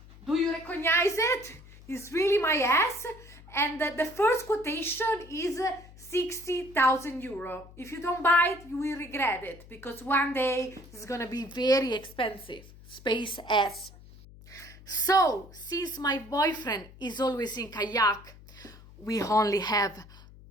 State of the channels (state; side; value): noise; left; hum, 20 dB below the sound